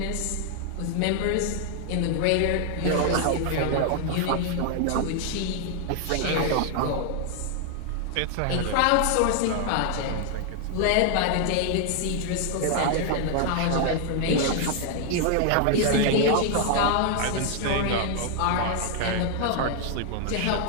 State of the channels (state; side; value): different; both; correlation 0.00